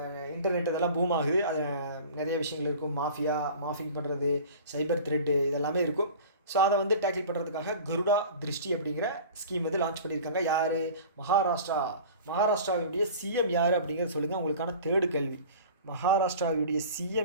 இன்டர்நெட் இதெல்லாம் பூம் ஆகுது. அது நிறைய விஷயங்கள் இருக்கும். மாஃபிங் பண்ணுறது, சைபர் த்ரெட்டு இதெல்லாமே இருக்கும். ஸோ அதை வந்து டேக்கிள் பண்ணுறதுக்காக கருடா திருஷ்டி அப்படிங்கிற ஸ்கீம் வந்து லான்ச் பண்ணியிருக்காங்க. யார்? மகாராஷ்டிராவுடைய சிஎம் யார் அப்படிங்கிறத சொல்லுங்கள். உங்களுக்கான தேர்டு கேள்வி. மகாராஷ்டிராவுடைய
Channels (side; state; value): both; inverted; correlation -0.40